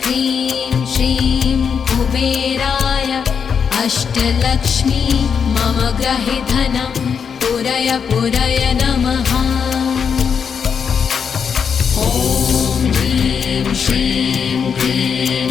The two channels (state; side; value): quieter; right; 6.7 dB